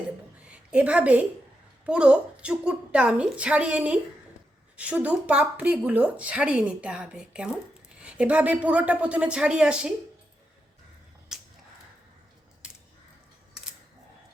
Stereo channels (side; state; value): both; normal; correlation 0.85